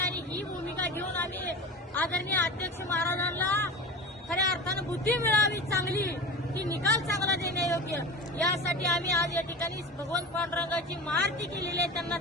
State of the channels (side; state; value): both; normal; correlation 0.31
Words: ही भूमिका घेऊन आम्ही आदरणीय अध्यक्ष महाराजांना खऱ्या अर्थानं बुद्धी मिळावी चांगली की निकाल चांगला देण्यायोग्य यासाठी आम्ही आज या ठिकाणी भगवंत पांडुरंगाची महाआरती केलेली आहे। त्यांना